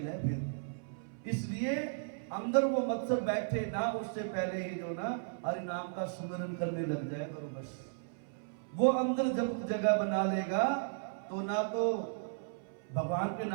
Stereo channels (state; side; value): silent; left; 54 dB below the other